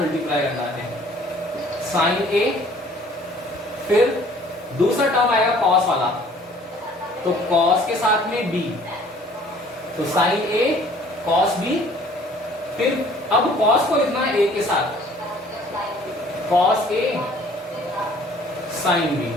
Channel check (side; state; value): both; normal; correlation 0.55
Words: मल्टीप्लाई करना है, साइन ए, फिर दूसरा टर्म आएगा कॉस वाला, तो कॉस के साथ में बी, तो साइन ए कॉस बी, फिर अब कॉस को लिखना है ए के साथ, कॉस ए साइन बी।